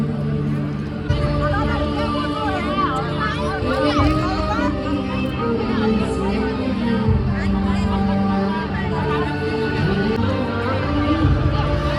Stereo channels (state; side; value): identical; both; correlation 1.00